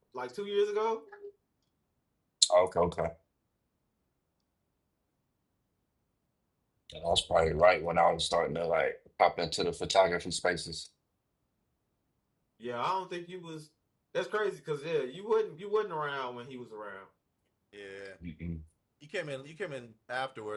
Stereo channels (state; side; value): identical; both; correlation 1.00